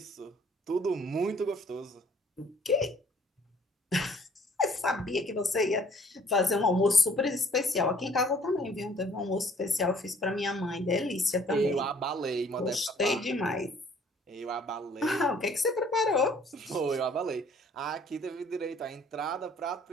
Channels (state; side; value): normal; both; correlation 0.57